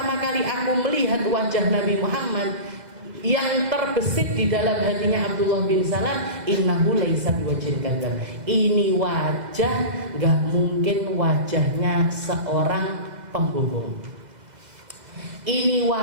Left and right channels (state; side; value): late; left; 2.0 ms